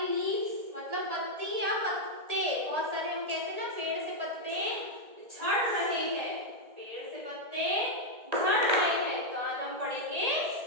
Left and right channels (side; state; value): left; late; 1.8 ms